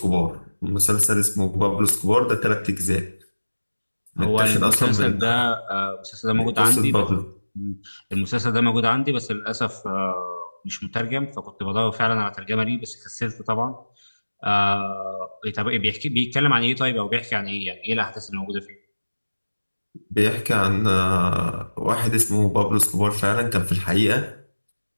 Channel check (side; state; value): both; inverted; correlation -1.00